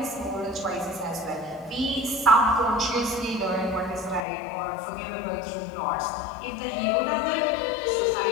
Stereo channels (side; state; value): right; drops out; at 4.2 s